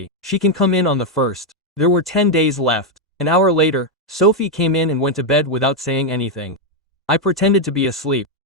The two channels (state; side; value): normal; both; correlation 0.02